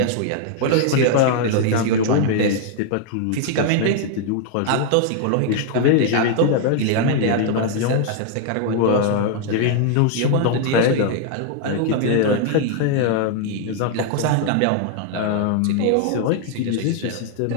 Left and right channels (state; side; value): different; both; correlation 0.00